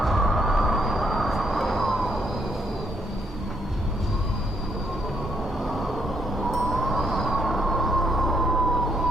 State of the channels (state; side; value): normal; both; correlation 0.72